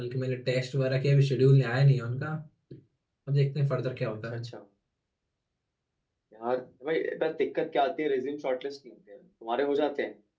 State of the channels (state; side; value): identical; both; correlation 1.00